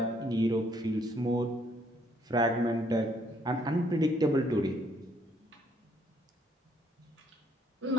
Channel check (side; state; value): both; normal; correlation 0.67